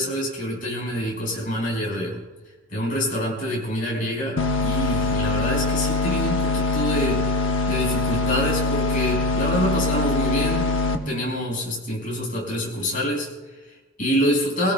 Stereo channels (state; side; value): normal; both; correlation 0.25